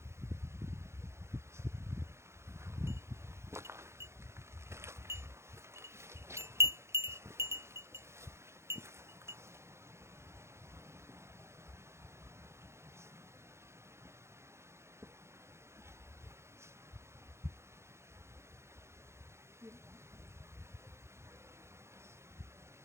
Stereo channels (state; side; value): late; left; 0.13 ms